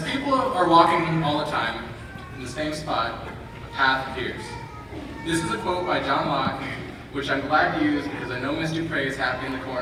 people are walking all the time in the same spot, a path appears. This is a quote by John Locke, which I'm glad to use because I know Miss Dupre is happy in the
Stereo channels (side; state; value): both; identical; correlation 1.00